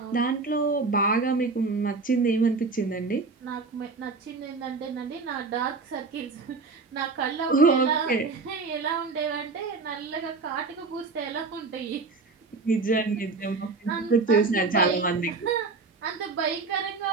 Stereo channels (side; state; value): left; quieter; 4.1 dB